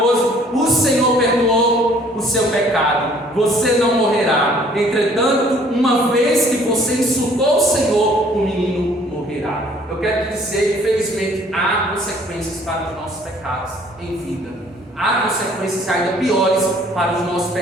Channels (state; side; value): normal; both; correlation 0.57